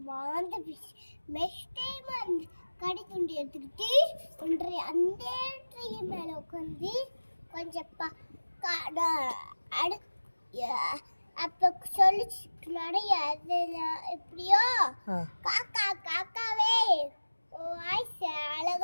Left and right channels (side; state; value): both; inverted; correlation -1.00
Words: வாழ்ந்து நெக்ஸ்ட் டைம் அந்த கறி துண்டு எடுத்துக்கிட்டு ஒன்றை அந்த ட்ரீ மேல உட்காந்து கொஞ்சம் அப்ப சொல்லிச்சு நிறைய எப்படியோ காக்கா காக்காவே வாய்ஸ்